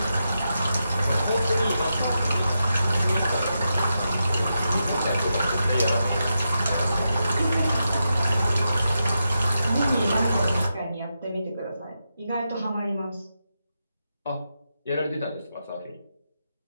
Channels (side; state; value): both; inverted; correlation -0.87